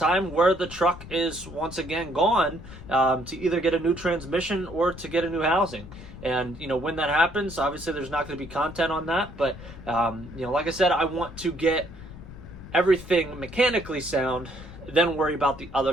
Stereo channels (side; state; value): left; noise; rumble, 15 dB below the sound